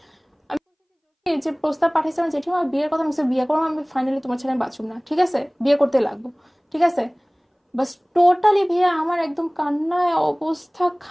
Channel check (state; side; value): identical; both; correlation 1.00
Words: আমি এই যে প্রস্তাব পাঠাইছে আমার জেঠিমা, বিয়ের কথা, আমি বলছি, বিয়ে করবো আমি, ফাইনালি তোমার ছেলে আমি বাঁচুম না, ঠিক আছে, বিয়ে করতে লাগবো, ঠিক আছে। বাস টোটালি ভাইয়া আমার একদম কান্নায় অবস্থা